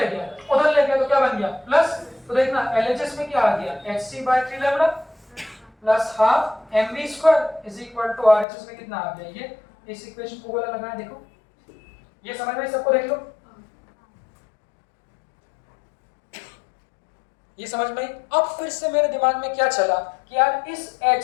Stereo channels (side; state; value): right; drops out; at 8.5 s